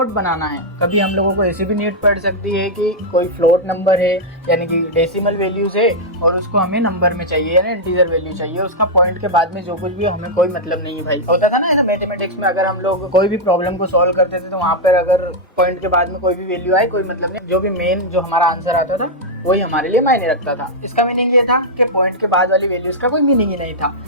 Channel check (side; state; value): both; normal; correlation -0.05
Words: बनाना है। कभी हम लोगों को ऐसी भी नीड पड़ सकती है कि कोई फ्लोट नंबर है, यानी कि डेसिमल वैल्यूज है और उसको हमें नंबर में चाहिए, यानी इंटीजर वैल्यू चाहिए। उसका पॉइंट के बाद में जो कुछ भी हमें कोई मतलब नहीं है भाई। होता था ना मैथमेटिक्स में, अगर हम लोग कोई भी प्रॉब्लम को सॉल्व करते थे तो वहाँ पर अगर पॉइंट के बाद में कोई भी वैल्यू आए कोई मतलब नहीं, जो भी मेन जो हमारा आंसर आता था वही हमारे लिए मायने रखता था। इसका मीनिंग ये था कि पॉइंट के बाद वाली वैल्यूज का कोई मीनिंग ही नहीं था।